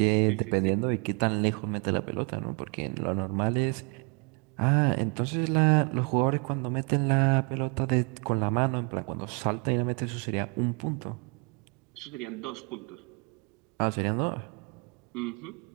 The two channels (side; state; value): left; quieter; 33.8 dB